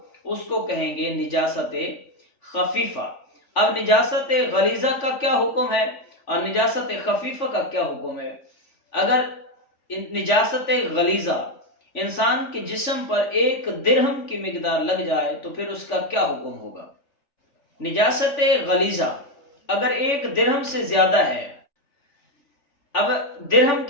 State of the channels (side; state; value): right; late; 3.5 ms